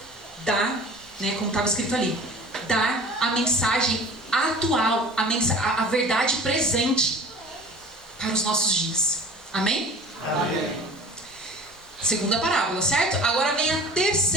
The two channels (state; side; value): normal; both; correlation 0.43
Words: Dar, né, como estava escrito ali, dar a mensagem atual, a verdade presente para os nossos dias. Amém? Amém. Segunda parábola, certo? Agora vem a